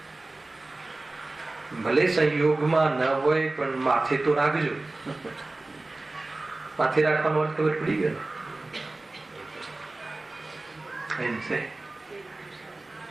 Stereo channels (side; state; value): left; quieter; 3.0 dB